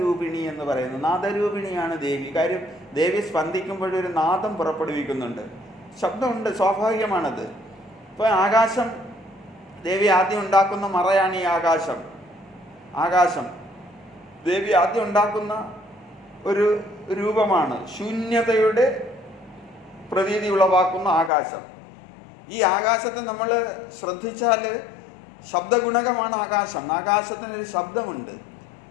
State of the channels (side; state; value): right; drops out; at 21.3 s